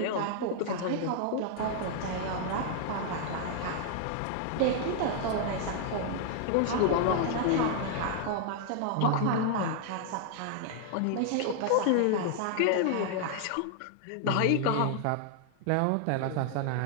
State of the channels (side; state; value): both; different; correlation 0.00